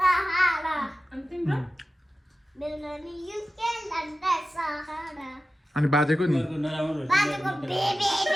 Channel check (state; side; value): normal; both; correlation 0.94